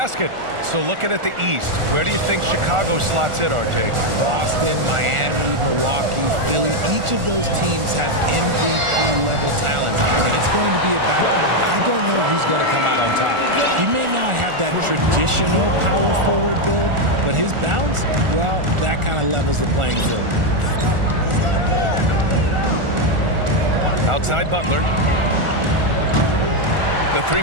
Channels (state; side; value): late; left; 1.4 ms